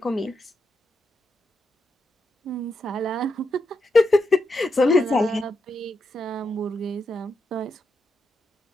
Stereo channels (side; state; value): both; normal; correlation 0.84